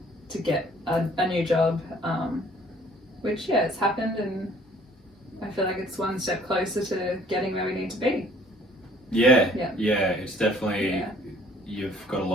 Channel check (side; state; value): both; normal; correlation 0.57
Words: to get a new job, which it's happened, and I feel like it's one step closer to getting where we need to be. Yeah. Yeah. It's definitely you've got a